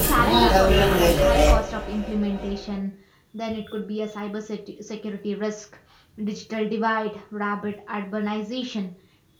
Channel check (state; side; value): identical; both; correlation 1.00